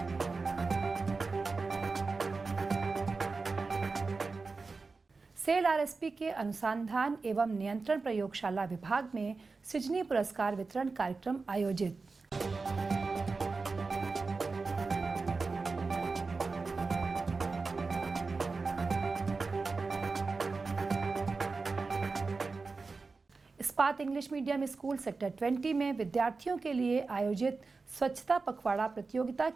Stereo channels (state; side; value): quieter; left; 4.1 dB